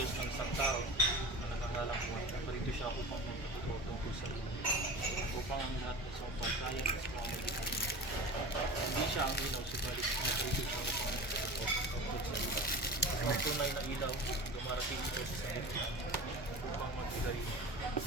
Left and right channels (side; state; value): both; normal; correlation 0.33